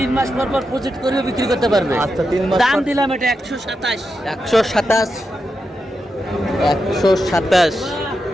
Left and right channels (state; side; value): normal; both; correlation 0.87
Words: মাস পর পর প্রজেক্ট করে বিক্রি করতে পারবে। আচ্ছা 3 মাস দাম দিলাম এটা 127। 127